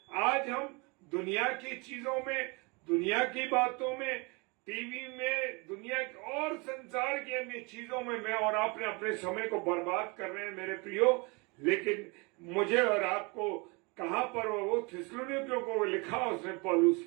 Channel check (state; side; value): quieter; left; 28.8 dB